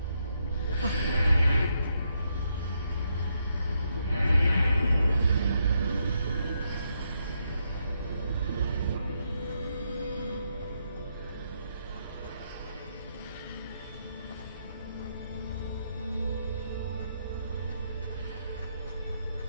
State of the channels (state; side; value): inverted; both; correlation -0.78